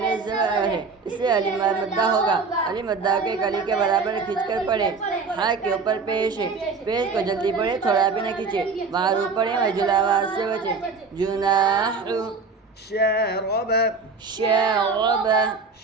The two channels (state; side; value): quieter; left; 4.5 dB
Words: زبر ہے اس سے الف مدہ ہوگا الف مدہ کے ایک الف کے برابر کھینچ کر پڑھے ہا کے اوپر پیش ہے پیش کو جلدی پڑھے تھوڑا بھی نہ کھینچے معروف پڑھے مجہول آواز سے بچے جناح شارب